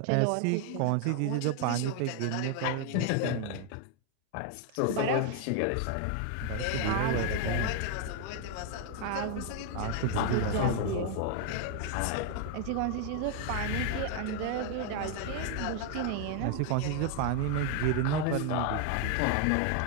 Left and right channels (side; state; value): both; different; correlation 0.00